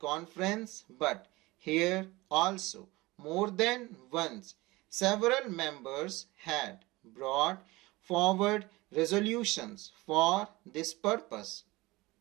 but here also more than once several members had brought forward resolutions for this purpose.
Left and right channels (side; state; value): left; quieter; 21.2 dB